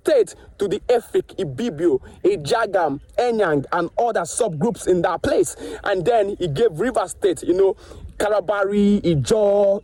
to the Efik, Ibibio, Ejagam, Enyang, and other subgroups in that place. And then he gave River State, you know, Kalabari, Ijo,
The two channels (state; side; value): identical; both; correlation 1.00